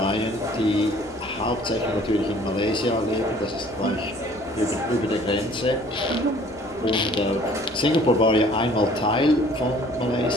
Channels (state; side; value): noise; left; hum, 24 dB below the sound